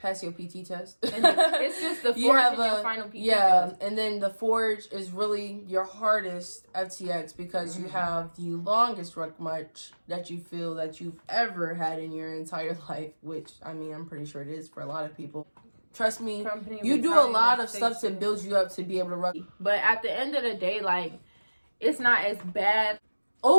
your PT test. It's just the forge and your final PT test. And then the forge is really your hardest FTX because you have the longest ruck march that you feel that you've ever had in your entire life, which, I mean, I'm pretty sure it is for a lot of people. Trust me, you do a lot of stuff to build you up to be able to run. But at the end of the day, like, it's not as bad.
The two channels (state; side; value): inverted; both; correlation -1.00